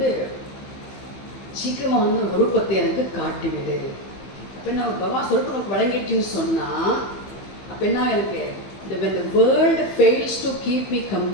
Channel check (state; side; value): late; right; 15 ms